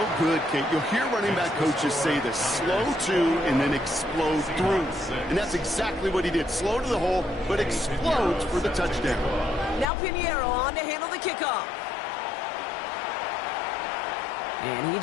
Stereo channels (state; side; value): drops out; right; at 9.9 s